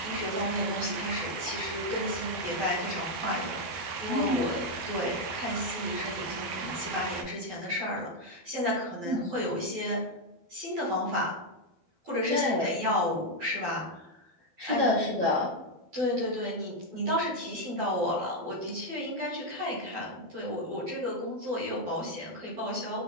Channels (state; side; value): late; left; 12 ms